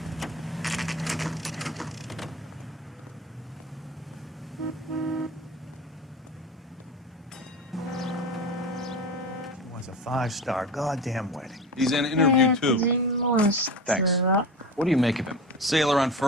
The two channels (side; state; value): both; normal; correlation 0.30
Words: Was a 5-star goddamn wedding. He's in an interview too. Thanks. What do you make of him? Sailor on